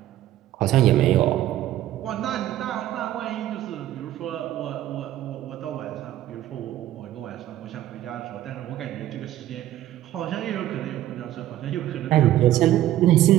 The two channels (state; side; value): quieter; left; 13.5 dB